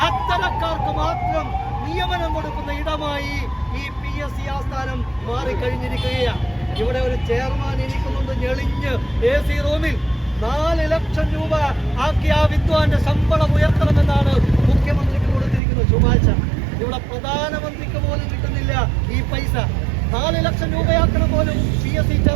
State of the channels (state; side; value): drops out; left; at 15.6 s